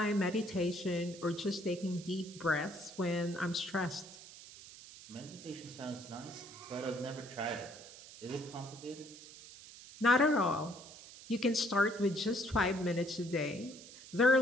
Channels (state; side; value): noise; right; hiss, 17 dB below the sound